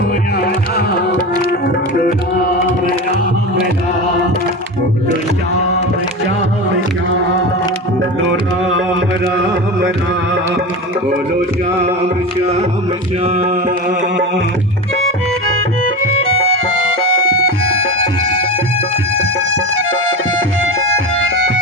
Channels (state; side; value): normal; both; correlation 0.25